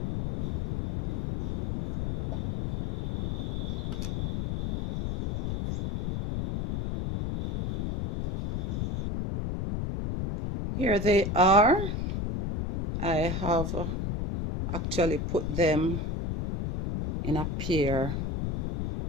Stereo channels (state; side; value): noise; left; rumble, 2 dB below the sound